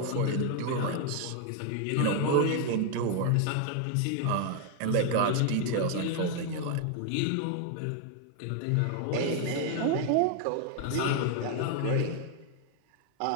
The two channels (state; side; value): different; both; correlation 0.00